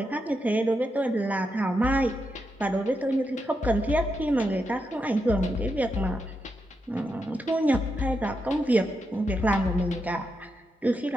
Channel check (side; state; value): both; normal; correlation 0.85